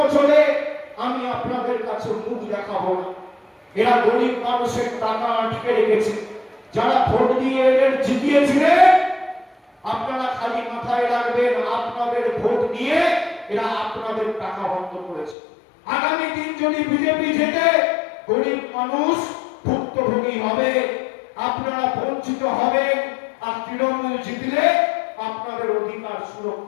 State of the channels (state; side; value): drops out; right; at 15.4 s